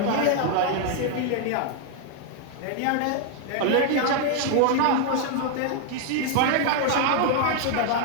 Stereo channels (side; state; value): both; different; correlation 0.00